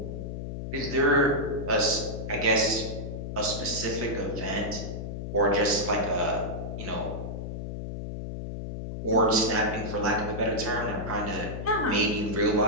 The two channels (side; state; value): left; noise; hum, 6 dB below the sound